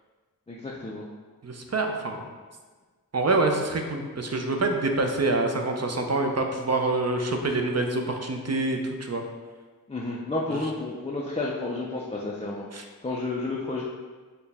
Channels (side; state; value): both; normal; correlation 0.08